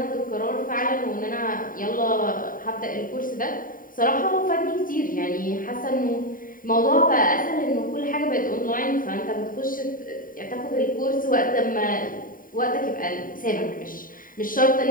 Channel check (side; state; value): right; late; 0.40 ms